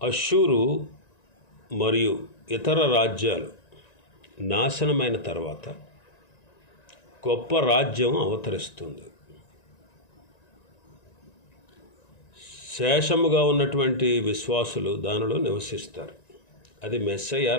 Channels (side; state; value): right; late; 1.9 ms